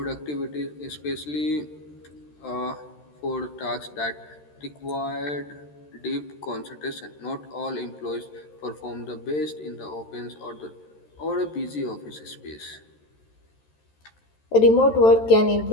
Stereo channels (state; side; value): late; right; 13 ms